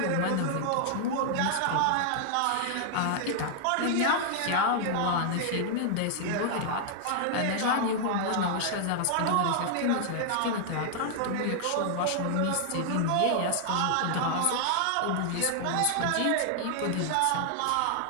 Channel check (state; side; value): different; both; correlation -0.01